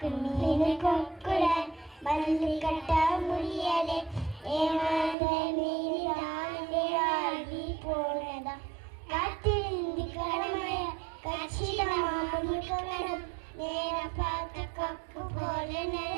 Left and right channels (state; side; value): drops out; left; at 5.2 s